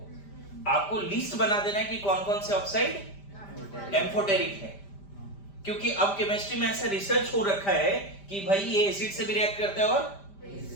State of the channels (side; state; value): right; late; 5.0 ms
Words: आपको लिस्ट बना देना है कि कौन कौन से ऑक्साइड एम्फोटेरिक है। क्योंकि अब केमिस्ट्री में ऐसा रिसर्च हो रखा है कि भाई ये एसिड से भी रिएक्ट करता है और